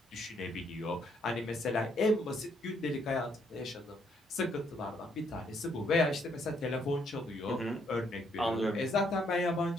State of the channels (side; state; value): both; normal; correlation 0.71